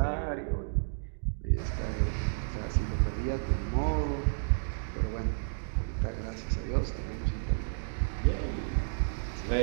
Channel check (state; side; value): silent; left; digital silence